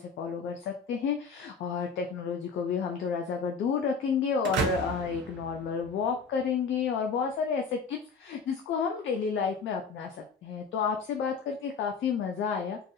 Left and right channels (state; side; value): quieter; right; 5.1 dB